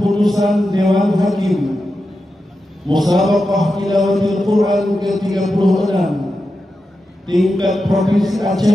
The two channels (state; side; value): normal; both; correlation 0.90